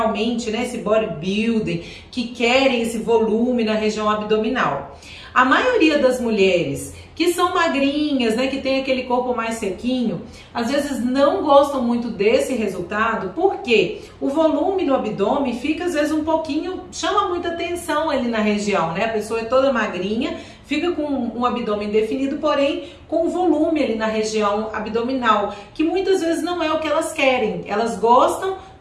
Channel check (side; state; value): both; identical; correlation 1.00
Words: né, esse bodybuilding, que querem esse volume na região abdominal. A maioria das mulheres que são magrinhas, né, que tem aquele corpo mais sequinho, às vezes não gostam muito desse resultado, porque o volume no abdômen fica às vezes um pouquinho, chama muita atenção ali na região, né? A pessoa é toda magrinha, fica com um abdômen definido, porém com volume ali na região abdominal, que muitas vezes não é o que elas querem. Elas gostam